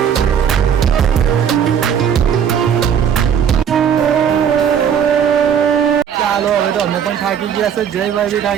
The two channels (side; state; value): left; quieter; 8.1 dB